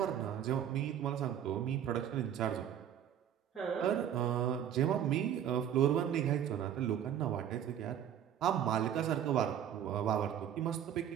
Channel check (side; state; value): left; quieter; 9.7 dB